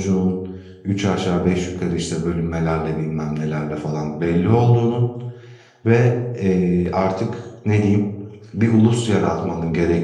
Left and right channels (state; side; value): identical; both; correlation 1.00